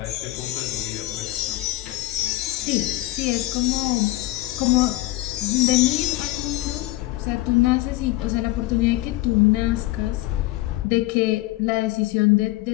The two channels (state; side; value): quieter; right; 18.1 dB